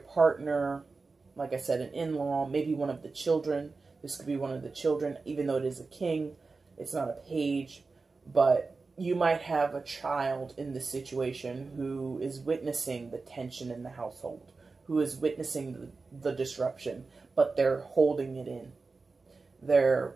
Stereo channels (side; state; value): left; quieter; 4.1 dB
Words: like I said, an in-law, maybe one of the children. This could be one of the children, even though it is a king. It's not a page. But you might have a child in this situation who is witnessing the tension in the household, who is witnessing the disruption, but they're holding it in. They're